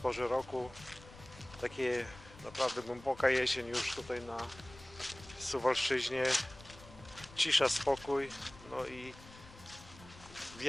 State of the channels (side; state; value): left; noise; rumble, 19 dB below the sound